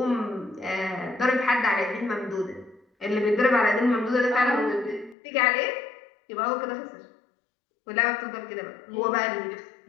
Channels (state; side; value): drops out; right; at 5.2 s